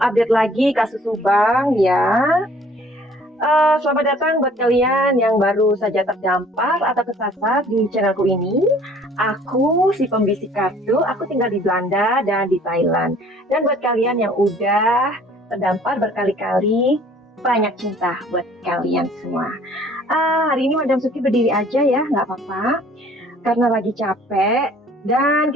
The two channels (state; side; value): normal; both; correlation 0.55